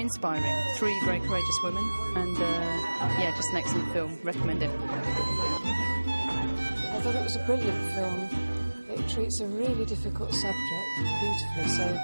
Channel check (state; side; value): inverted; both; correlation -1.00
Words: inspiring. 3 very courageous women, and just an excellent film. Recommend it. I thought it was a brilliant film. It treats a really difficult subject beautifully, so